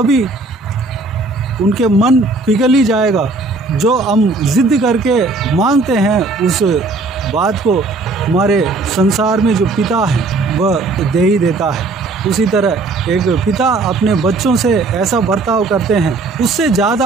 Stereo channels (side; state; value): left; quieter; 3.5 dB